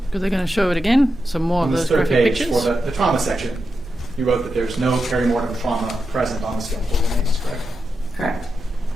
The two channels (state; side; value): normal; both; correlation 0.88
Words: because they're going to show it again. Some more On of this those third graphic page, pictures. for the trauma section, you wrote that there's no perimortem trauma present on the skeletal remains, correct? Correct.